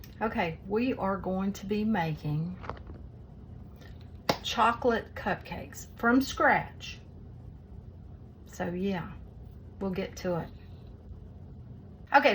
Okay, we are going to be making chocolate cupcakes from scratch. So yeah, we'll get to it.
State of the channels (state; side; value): identical; both; correlation 1.00